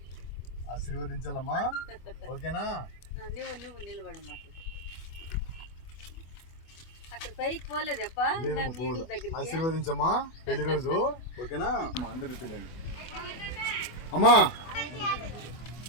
ఆశీర్వదించాలమ్మా. ఓకేనా? నువ్వు నిలబడమ్మా. ఆశీర్వదించమ్మా పెళ్లి రోజు. ఓకేనా? అందరూ చూడండి అమ్మా.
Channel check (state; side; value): late; right; 24 ms